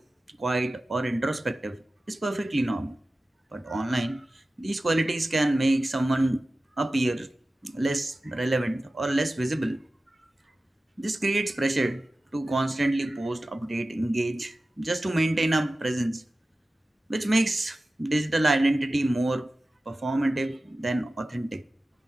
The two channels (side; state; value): both; normal; correlation 0.95